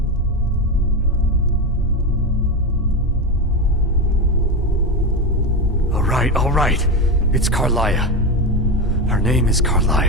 All right. It's Carlia. Her name is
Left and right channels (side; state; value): both; normal; correlation 0.15